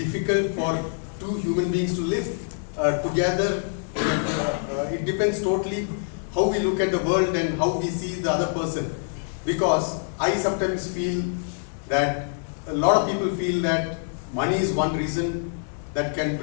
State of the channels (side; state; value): right; silent; digital silence